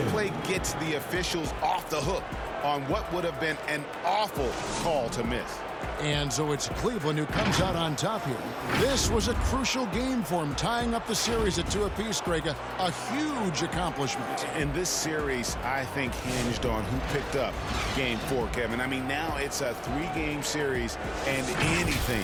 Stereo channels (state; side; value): identical; both; correlation 1.00